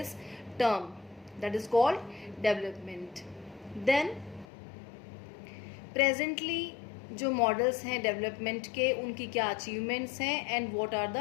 term that is called development. Then presently जो models हैं development के, उनकी क्या achievements हैं and what are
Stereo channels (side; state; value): right; drops out; at 4.5 s